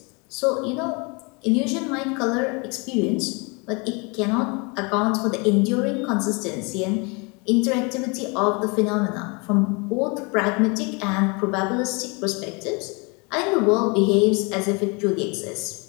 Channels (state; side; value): quieter; right; 30.4 dB